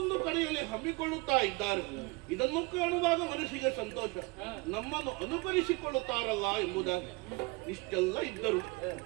ಕಡೆಯಲ್ಲಿ ಹಮ್ಮಿಕೊಳ್ಳುತ್ತಾ ಇದ್ದಾರೆ. ಇದನ್ನು ಕಾಣುವಾಗ ಮನಸ್ಸಿಗೆ ಸಂತೋಷ. ನಮ್ಮನ್ನು ಅನುಕರಿಸಿಕೊಳ್ಳುತ್ತಾರಲ್ಲ ಎಂಬುದಾಗಿ ಇಷ್ಟೆಲ್ಲ ಇದ್ದರು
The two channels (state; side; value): quieter; left; 26.2 dB